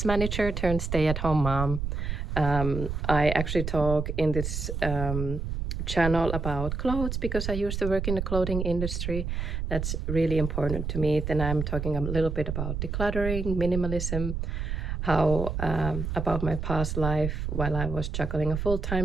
turned stay-at-home mom. I actually talk in this channel about clothes because I used to work in the clothing industry. That's really important to me. Then I'm talking a little bit about decluttering, minimalism, how about my past life while I was juggling a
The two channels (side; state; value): right; noise; rumble, 3 dB below the sound